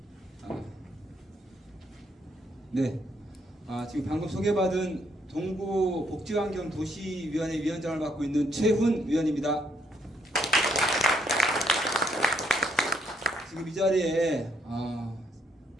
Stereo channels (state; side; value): normal; both; correlation 0.73